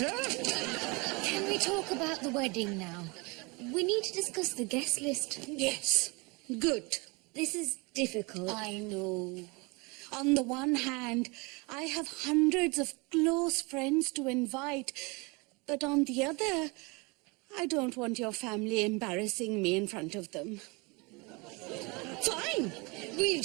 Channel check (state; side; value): quieter; left; 27.9 dB